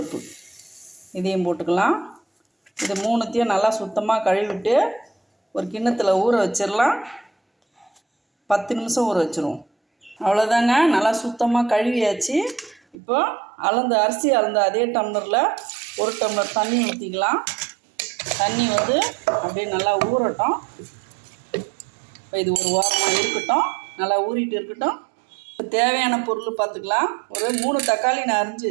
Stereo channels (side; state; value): left; drops out; at 13.0 s